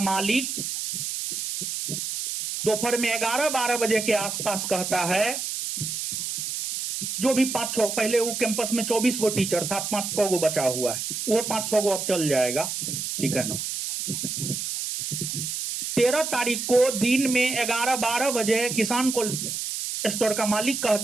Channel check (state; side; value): noise; right; hiss, 4 dB below the sound